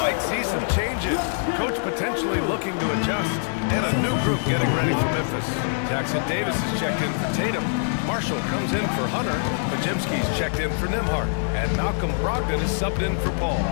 see some changes. Coach potentially looking to adjust. And a new group getting ready for Memphis. Jackson Davis is checked in for Tatum. Marshall comes in for Hunter. Podziemski's checked in for Nembhard. And Malcolm Brogdon is subbed in for Paul.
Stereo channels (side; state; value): right; silent; 59 dB below the other